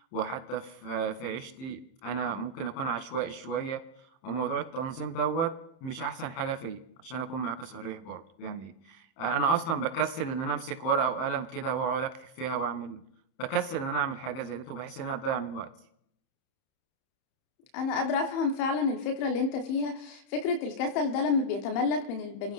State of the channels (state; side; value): late; right; 31 ms